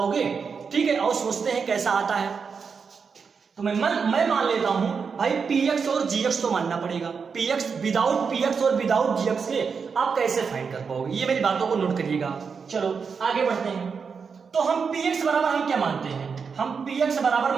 ठीक है, और सोचते हैं कैसा आता है। तो मैं मान लेता हूं भाई px और gx तो मानना पड़ेगा। px विदाउट px और विदाउट gx के आप कैसे फाइंड कर पाओगे? ये मेरी बातों को नोट करिएगा। चलो आगे बढ़ते हैं। तो हम px बराबर हम क्या मानते हैं? हम px बराबर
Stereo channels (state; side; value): quieter; left; 5.7 dB